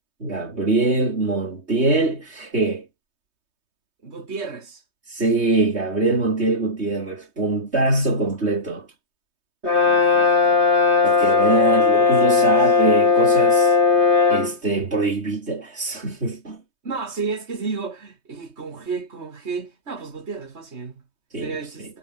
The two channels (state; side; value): late; left; 3.2 ms